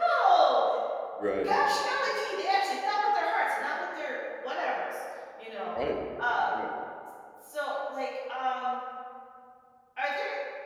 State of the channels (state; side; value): identical; both; correlation 1.00